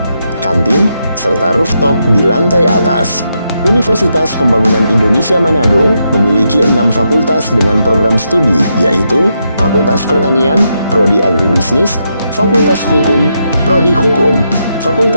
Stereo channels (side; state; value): both; inverted; correlation -0.82